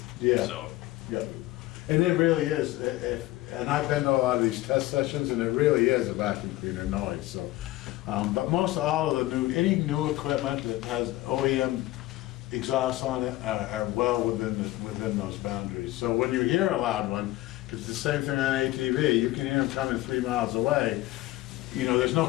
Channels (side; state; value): right; quieter; 17.3 dB